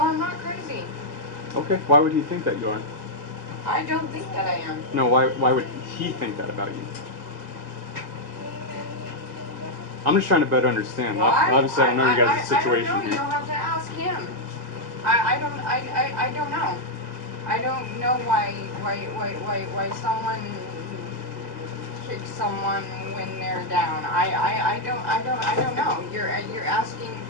I'm not crazy. Okay, why would he think that you are? I don't think that I am. No, why would he think that about you? I'm just trying to better understand. Why? Obviously, I know you guys' situation I don't know. here. You'll have to ask him. I don't know. I don't know why someone kicks someone when they're down. I don't know. You're asking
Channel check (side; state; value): left; late; 2.0 ms